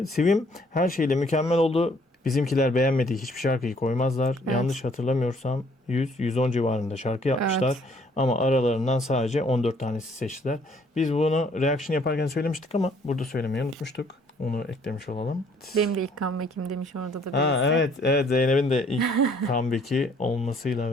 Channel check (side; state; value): both; normal; correlation 0.62